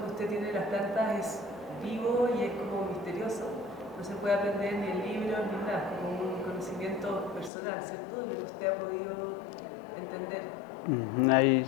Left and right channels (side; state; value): right; drops out; at 7.5 s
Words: usted tiene de las plantas es vivo y es como misterioso. No se puede aprender ni en libros ni nada, como un conocimiento personal, ¿cierto? De lo que usted ha podido entender. Ahí